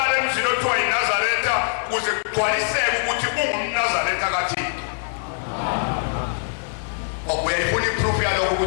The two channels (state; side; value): silent; right; 64 dB below the other